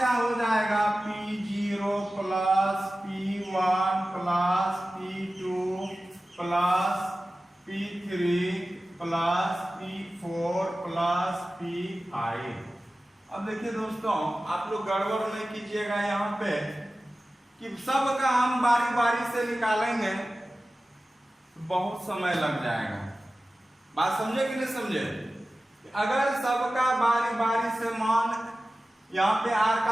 हो जाएगा P0 plus P1 plus P2 plus P3 plus P4 plus P5। अब देखिए दोस्तों आप लोग गड़बड़ नहीं कीजिएगा यहाँ पे कि सब का हम बारी बारी से निकालेंगे तो बहुत समय लग जाएगा। बात समझे कि नहीं समझे? अगर सबका बारी बारी से मान, यहाँ पे R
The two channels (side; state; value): both; normal; correlation 0.95